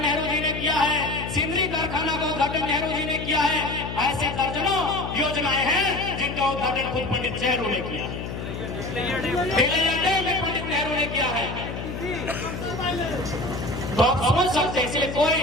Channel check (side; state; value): left; noise; hum, 7 dB below the sound